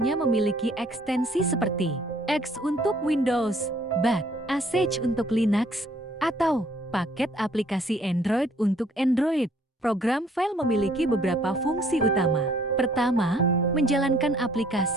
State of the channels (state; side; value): normal; both; correlation 0.61